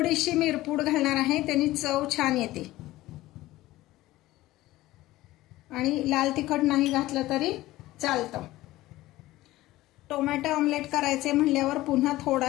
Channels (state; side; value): quieter; right; 17.0 dB